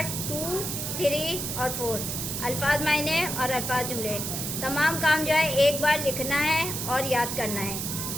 2 3 اور 4. الفاظ معنی اور الفاظ جملے. تمام کام جو ہے ایک بار لکھنا ہے اور یاد کرنا ہے.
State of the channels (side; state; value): right; noise; hiss, 3 dB below the sound